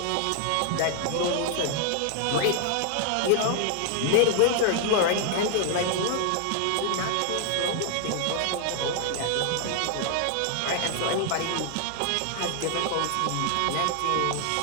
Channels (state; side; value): different; both; correlation -0.01